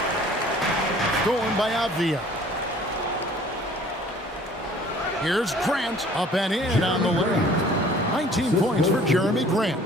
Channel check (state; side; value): normal; both; correlation 0.52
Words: Stolen by Avdia. Here's Grant, up and in on the lane. 19 points for Jeremy Grant.